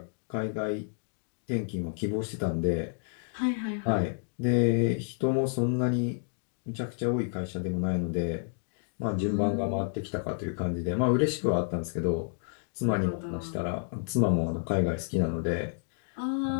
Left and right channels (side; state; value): right; silent; digital silence